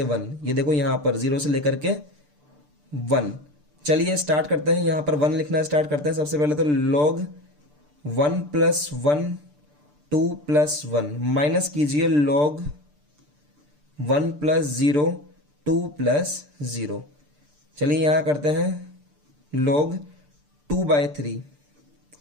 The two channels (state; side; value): late; left; 6.8 ms